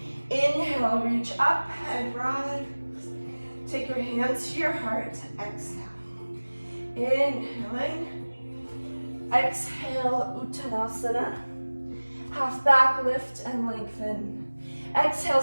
Inhale, reach up and rise. Take your hands to your heart, exhale. Inhaling. Exhale, Uttanasana. Half back, lift and lengthen. Exhale,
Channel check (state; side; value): inverted; both; correlation -1.00